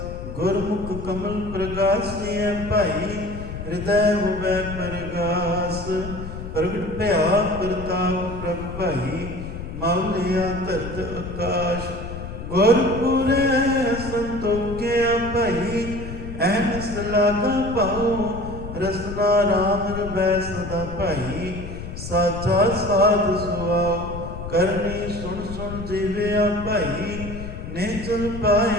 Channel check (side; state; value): left; noise; rumble, 9 dB below the sound